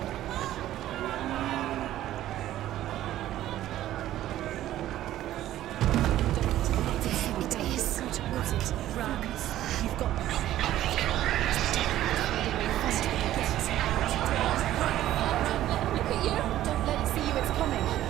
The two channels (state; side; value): quieter; left; 13.5 dB